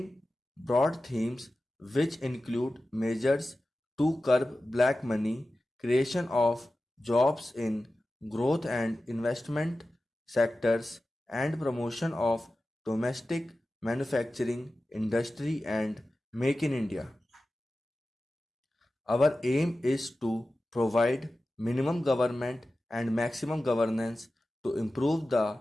broad themes which include measures to curb black money, creation of jobs in growth and investment sectors, and promotion of domestic manufacturing, industry, and Make in India. Our aim is to provide minimum government and maximum governance to improve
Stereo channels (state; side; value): normal; both; correlation 0.94